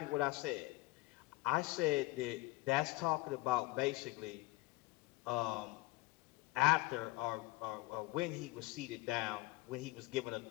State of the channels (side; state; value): right; quieter; 20.4 dB